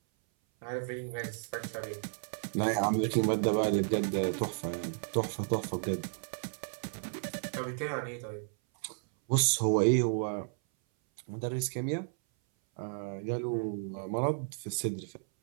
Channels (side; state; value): left; silent; 56 dB below the other